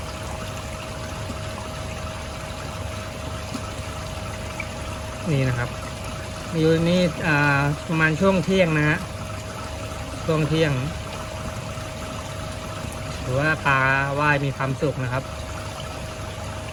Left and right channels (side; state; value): both; identical; correlation 1.00